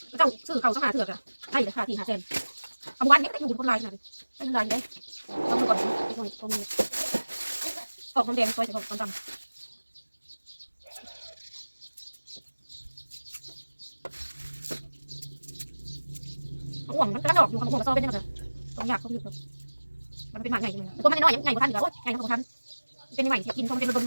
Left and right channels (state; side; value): inverted; both; correlation -1.00